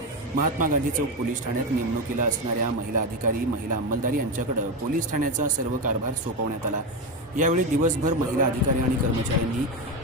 महात्मा गांधी चौक पोलीस ठाण्यात नेमणुकीला असणाऱ्या महिला अधिकारी, महिला अंमलदार यांच्याकडे पोलीस ठाण्याचा सर्व कारभार सोपवण्यात आला। यावेळी दिवसभर महिला अधिकारी आणि कर्मचाऱ्यांनी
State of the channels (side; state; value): both; normal; correlation 0.14